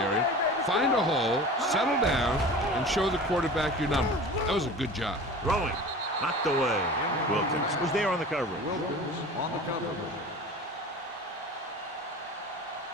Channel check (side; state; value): both; normal; correlation 0.37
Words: find a hole, settle down, and show the quarterback your number. That was a good job. Throwing. Knocked away. Wilkins was there on the coverage. Wilkins on the coverage.